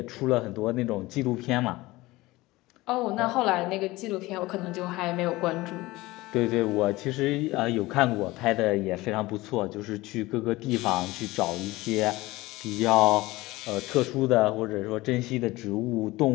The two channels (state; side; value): quieter; right; 19.8 dB